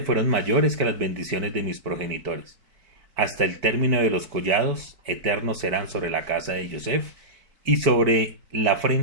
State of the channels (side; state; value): left; late; 4.6 ms